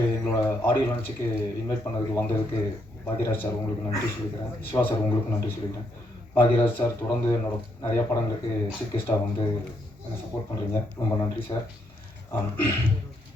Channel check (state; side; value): normal; both; correlation 0.76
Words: எங்களோட ஆடியோ லான்ச்சுக்கு இன்வைட் பண்ணதுக்கு வந்ததுக்கு பாக்யராஜ் சார் உங்களுக்கு நன்றி சொல்லிக்கிறேன். சிவா சார் உங்களுக்கு நன்றி சொல்லிக்கிறேன். பாக்யராஜ் சார் தொடர்ந்து என்னோட நிறையா படங்களுக்கு சீஃப் கெஸ்ட்டாக வந்து என்னை சப்போர்ட் பண்ணுறீங்க, ரொம்ப நன்றி சார்.